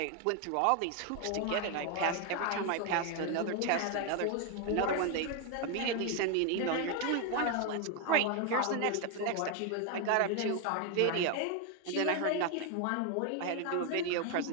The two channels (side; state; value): both; different; correlation 0.01